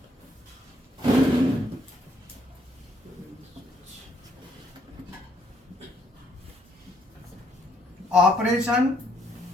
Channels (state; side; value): normal; both; correlation 0.70